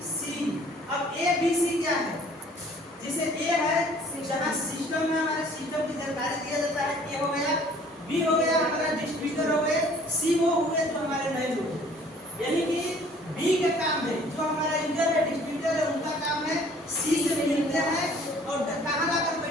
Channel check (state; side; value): normal; both; correlation 0.54